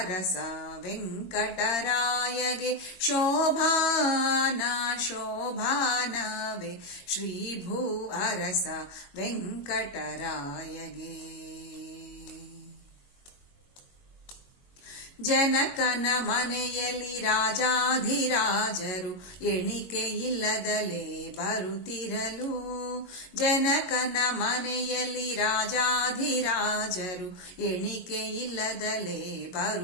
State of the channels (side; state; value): right; late; 22 ms